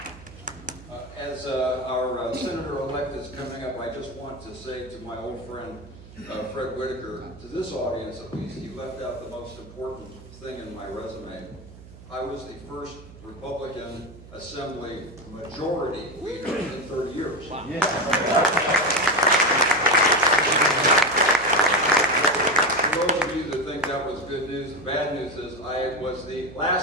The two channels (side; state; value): right; noise; hum, 18 dB below the sound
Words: As our Senator-elect is coming up, I just want to say to my old friend, Fred Whitaker, to this audience at least, he left out the most important thing in my resume. I was the first Republican Assembly majority leader in 30 years. Wow. Yeah. For those of you that think that was good news, the bad news is I was the